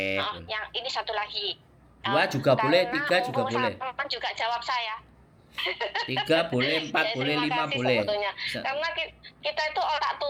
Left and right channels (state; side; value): identical; both; correlation 1.00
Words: yang ini satu lagi. Dua juga boleh, Karena tiga juga mumpung boleh. sampean juga jawab saya. Tiga boleh, Ya, empat boleh, terima lima kasih boleh. sebetulnya. Karena kita itu orang